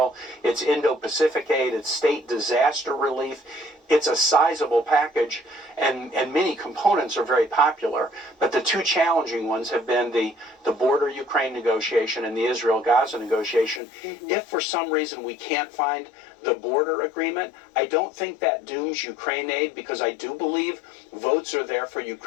it's Indo-Pacific aid, it's state disaster relief. It's a sizable package, and many components are very popular. But the two challenging ones have been the border Ukraine negotiation and the Israel-Gaza negotiation. Mm-hmm. If for some reason we can't find the border agreement, I don't think that dooms Ukraine aid, because I do believe votes are there for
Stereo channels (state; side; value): drops out; right; at 13.8 s